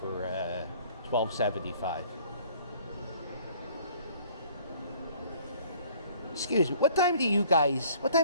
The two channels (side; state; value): both; inverted; correlation -0.55